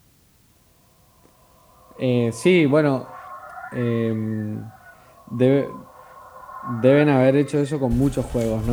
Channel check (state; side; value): identical; both; correlation 1.00